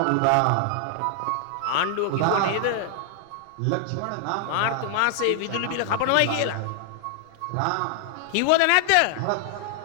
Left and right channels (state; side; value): different; both; correlation 0.00